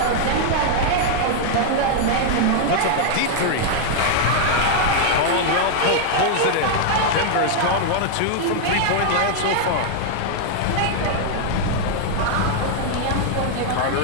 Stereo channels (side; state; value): both; different; correlation 0.00